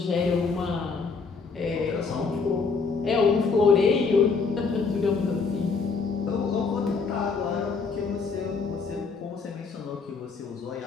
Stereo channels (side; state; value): right; quieter; 4.9 dB